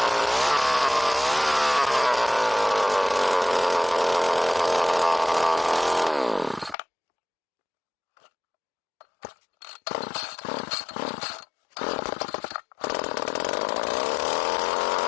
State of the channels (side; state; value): right; drops out; at 6.8 s